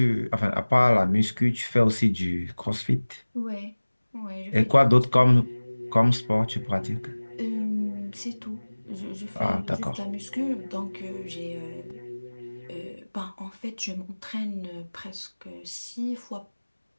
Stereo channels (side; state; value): both; inverted; correlation -1.00